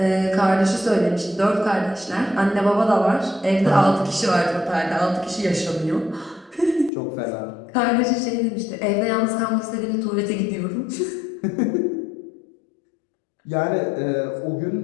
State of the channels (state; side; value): drops out; right; at 6.9 s